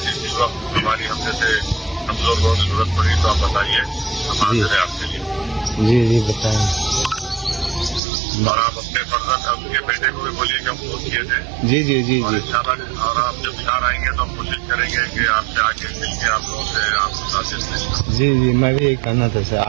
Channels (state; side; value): drops out; left; at 8.0 s